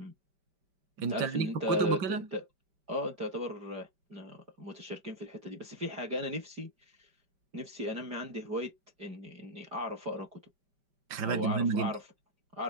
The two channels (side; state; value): left; late; 5.1 ms